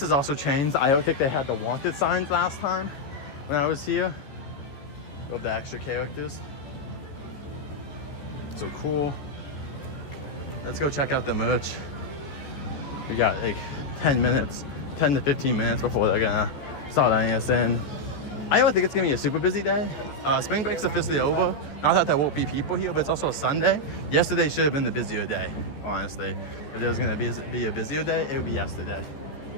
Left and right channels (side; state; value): right; late; 14 ms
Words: has also changed. I don't think they had the wanted signs last time when I was here. Of the extra characters. So cool. Let's go check out the merch. We got like 10 to 15 minutes before they're gonna start letting us in. I don't think it's gonna be a super busy day. Spring break's officially over. Not that there won't be people here, but it's also a Sunday. Yesterday should have been the busier day, honestly. If there was gonna be a busier day, it would be yesterday.